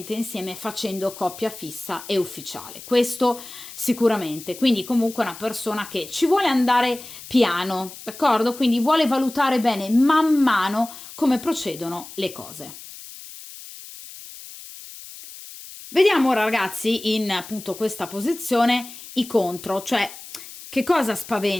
insieme facendo coppia fissa e ufficiale. Questo sicuramente. Quindi comunque è una persona che ci vuole andare piano, d'accordo? Quindi vuole valutare bene man mano come procedono le cose. Vediamo ora ragazzi in appunto questa posizione i contro, cioè che cosa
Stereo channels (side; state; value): left; noise; hiss, 15 dB below the sound